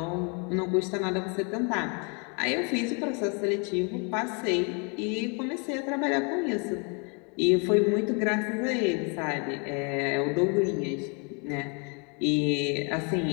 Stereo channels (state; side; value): quieter; right; 35.3 dB